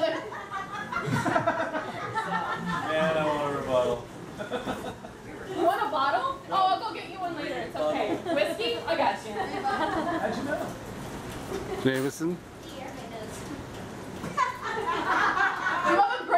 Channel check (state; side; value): identical; both; correlation 1.00